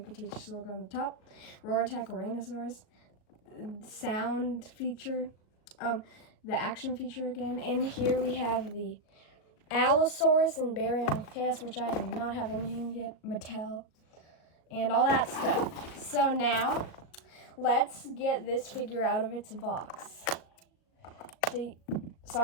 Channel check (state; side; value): late; right; 38 ms